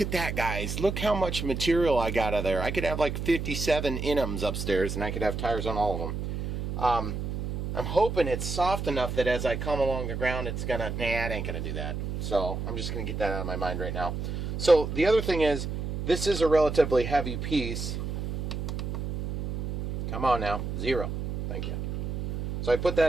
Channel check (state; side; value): noise; right; hum, 4 dB below the sound